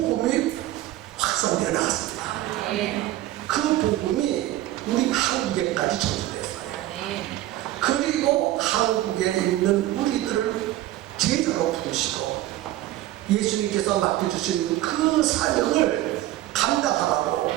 확산되어 나갔습니다. 그 복음이 우리 한국에까지 전수됐어요. 그리고 한국에 있는 우리들을 제자로 부르시고 예수님께서 맡겨주신 그 사명을 감당하라고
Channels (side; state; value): left; quieter; 15.1 dB